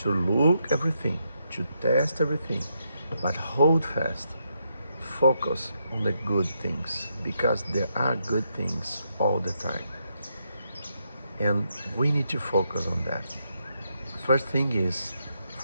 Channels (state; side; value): inverted; both; correlation -0.80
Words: to look everything, to test everything, but hold fast. Focus on the good things because there are good things all the time. And we need to focus on that. First thing is